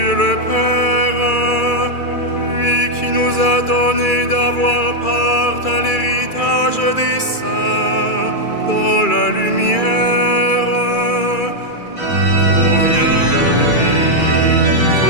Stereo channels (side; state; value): right; late; 2.4 ms